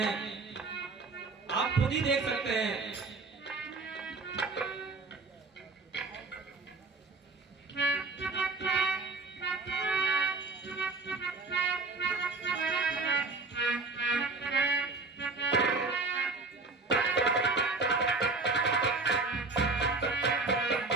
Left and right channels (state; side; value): quieter; left; 3.7 dB